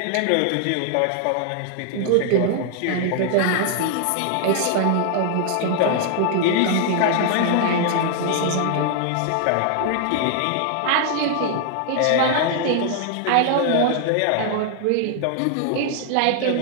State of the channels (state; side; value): different; both; correlation 0.00